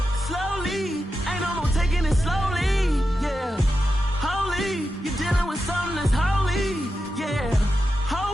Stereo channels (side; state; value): both; normal; correlation 0.89